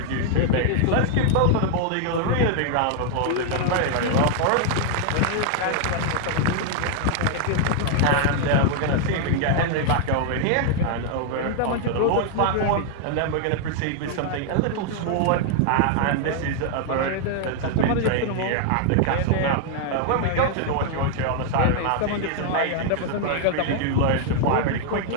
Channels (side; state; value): both; different; correlation 0.00